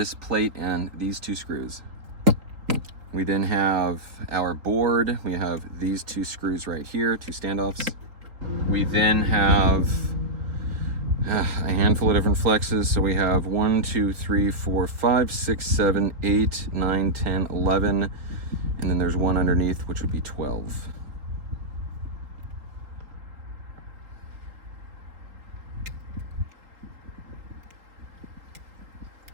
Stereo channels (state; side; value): late; left; 3.8 ms